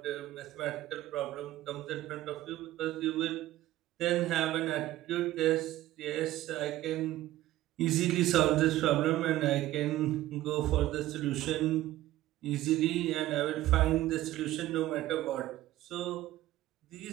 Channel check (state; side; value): quieter; left; 15.3 dB